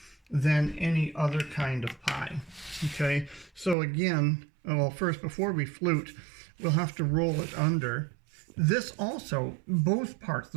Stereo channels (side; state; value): left; drops out; at 3.8 s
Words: than any other kind of pie. Okay, so again, well, first, before we flute, we'll have to roll it under. This also, both parts,